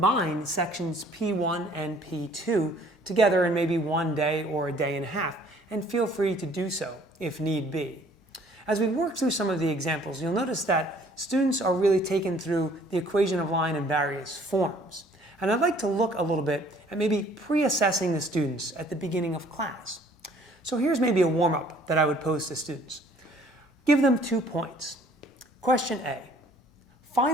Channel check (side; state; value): both; normal; correlation 0.57